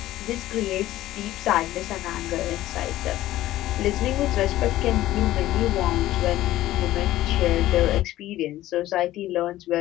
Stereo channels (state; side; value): quieter; right; 15.0 dB